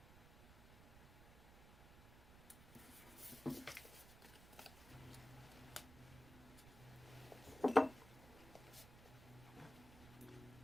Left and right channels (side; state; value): right; noise; rumble, 17 dB below the sound